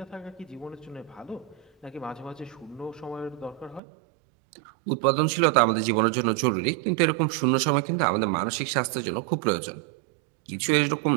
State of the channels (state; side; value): drops out; left; at 3.8 s